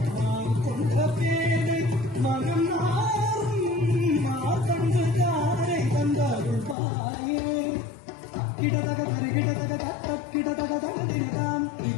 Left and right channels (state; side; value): drops out; right; at 6.8 s